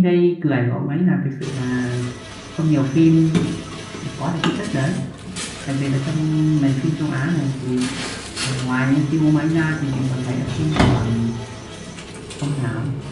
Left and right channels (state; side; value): identical; both; correlation 1.00